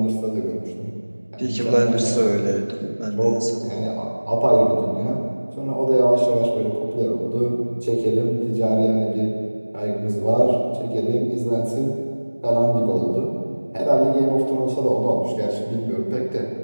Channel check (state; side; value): inverted; both; correlation -1.00